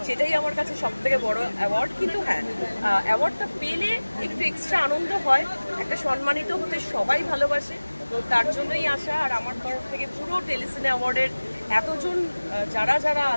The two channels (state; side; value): inverted; both; correlation -1.00